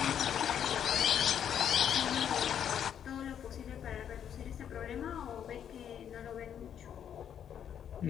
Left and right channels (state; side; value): quieter; right; 9.0 dB